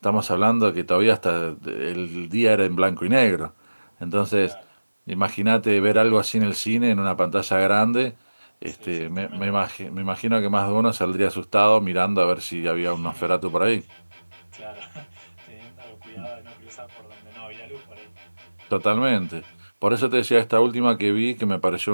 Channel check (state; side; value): inverted; both; correlation -1.00